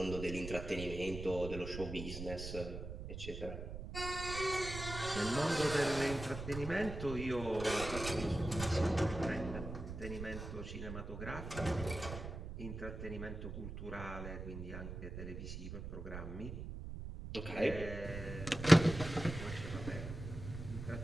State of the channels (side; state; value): right; noise; rumble, 8 dB below the sound